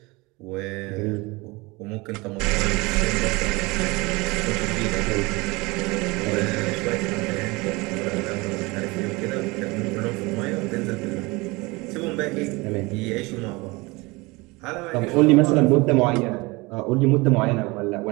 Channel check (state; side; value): quieter; left; 24.3 dB